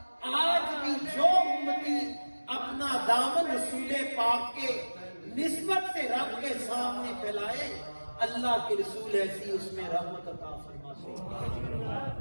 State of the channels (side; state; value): both; inverted; correlation -1.00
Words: آج بھی جو امتی اپنا دامن رسول پاک کے نسبت سے رب کے سامنے پھیلائے، اللہ کے رسول ایسی اس میں رحمت عطا فرماتے